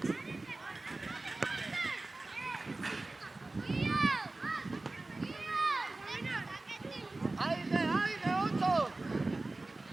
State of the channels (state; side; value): quieter; left; 3.1 dB